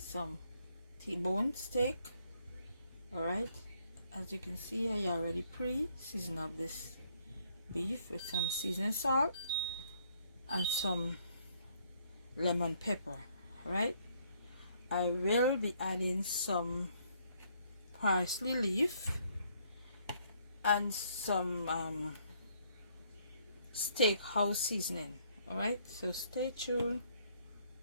some T-bone steak. Alright, as you can see, I already pre-seasoned up this beef with some seasoning salt and some lemon pepper. Alright, I will be adding some parsley leaf and some steakhouse seasoning. Alright, so stay tuned.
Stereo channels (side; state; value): both; inverted; correlation -0.67